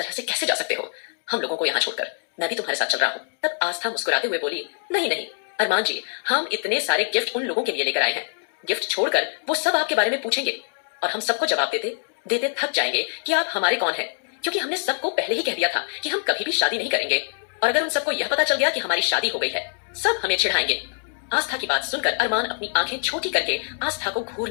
से कैसे जा सकते हो हम लोगों को यहाँ छोड़कर? मैं भी तुम्हारे साथ चल रहा हूँ। तब आस्था मुस्कुराते हुए बोली, नहीं नहीं अरमान जी, हम इतने सारे गिफ्ट उन लोगों के लिए लेकर आए हैं, गिफ्ट छोड़कर वो सब आपके बारे में पूछेंगे और हम सबको जवाब देते देते थक जाएंगे कि आप हमारे कौन हैं, क्योंकि हमने सबको पहले ही कह दिया था कि हम कभी भी शादी नहीं करेंगे। और अगर उन सबको यह पता चल गया कि हमारी शादी हो गई है, सब हमें चिढ़ाएंगे। आस्था की बात सुनकर अरमान अपनी आंखें छोटी करके आस्था को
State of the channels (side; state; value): right; silent; 62 dB below the other